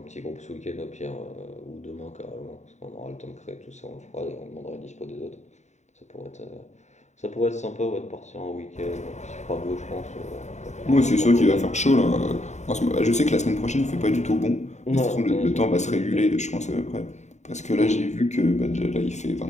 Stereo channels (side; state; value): right; late; 0.34 ms